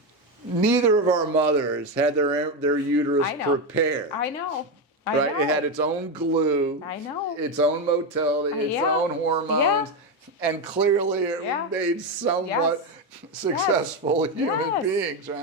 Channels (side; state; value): both; normal; correlation 0.11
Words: Neither of our mothers had their uterus I know. prepared. I know. I Right? know. It had its own glue. I know. Its own motility, its Yeah. own hormones. Yeah. And clearly it Yeah. made somewhat Yes. successful human Yes. beings,